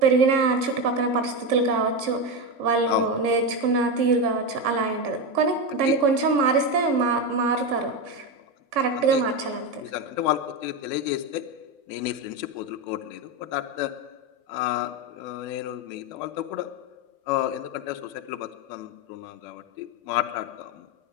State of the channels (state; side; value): late; left; 3.6 ms